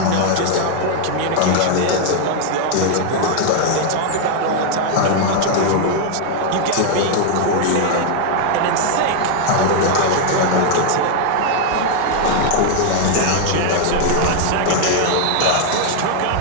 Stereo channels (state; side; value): different; both; correlation 0.00